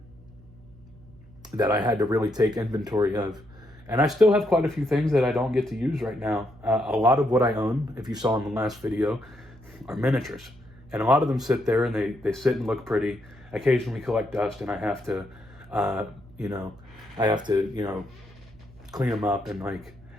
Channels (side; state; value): right; noise; hum, 24 dB below the sound